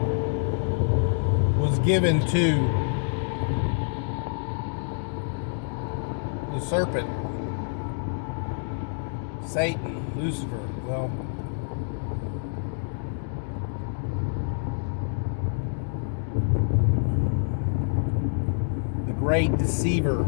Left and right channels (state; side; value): silent; right; digital silence